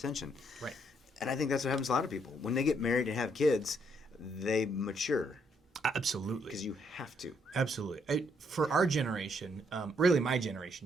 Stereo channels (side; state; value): both; normal; correlation 0.71